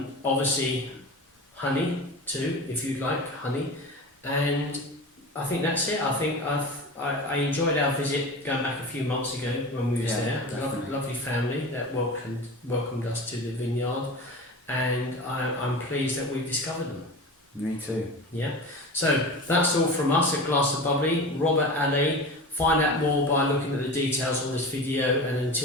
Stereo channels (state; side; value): normal; both; correlation 0.31